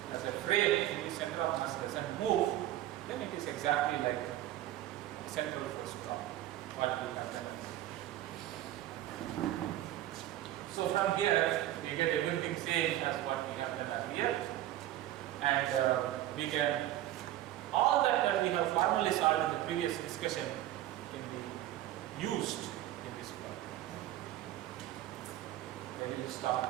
as a frame, the center of mass doesn't move, then it is exactly like a central force problem. What we have done. So from here, we get everything same as what we have done earlier, and we can, all that we have formally solved in the previous discussion can be used in this problem. We will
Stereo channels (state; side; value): quieter; left; 13.7 dB